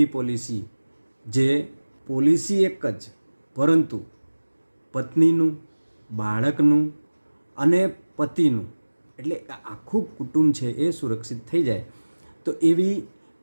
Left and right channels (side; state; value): both; inverted; correlation -1.00